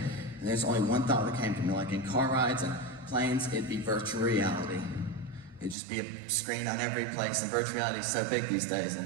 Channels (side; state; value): left; drops out; at 5.8 s